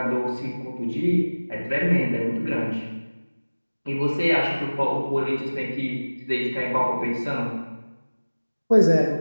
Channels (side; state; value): both; inverted; correlation -1.00